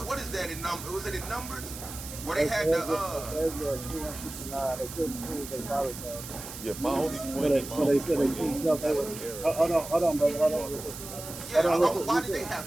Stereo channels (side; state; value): right; noise; hiss, 11 dB below the sound